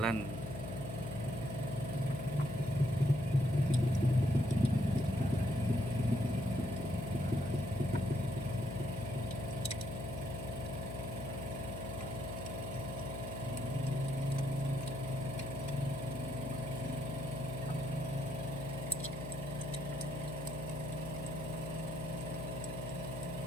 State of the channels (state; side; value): noise; left; hum, 7 dB below the sound